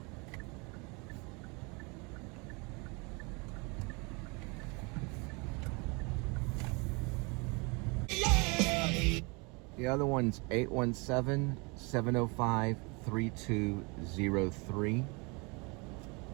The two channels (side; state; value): left; quieter; 29.5 dB